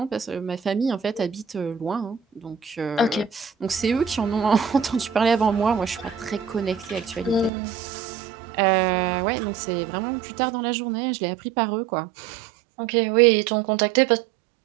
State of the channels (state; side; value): drops out; left; at 7.5 s